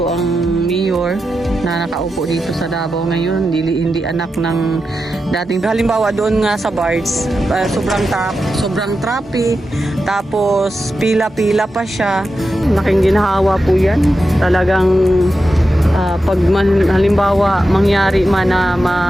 ang mayor na nakaupo dito sa Davao ngayon, hindi anak ng dating. Halimbawa doon nga sa bars, sobrang traffic, tapos pila-pila pa siya. Laking ginhawa po yan. Talagang pag halimbawa mangyari man na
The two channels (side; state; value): both; normal; correlation 0.89